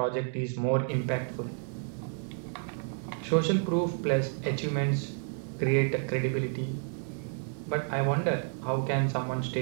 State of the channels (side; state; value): left; silent; 57 dB below the other